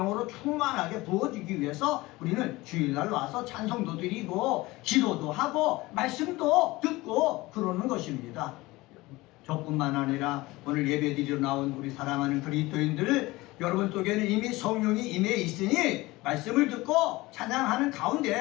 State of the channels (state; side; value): quieter; right; 20.4 dB